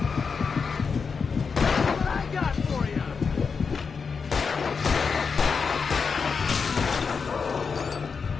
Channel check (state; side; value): quieter; right; 5.5 dB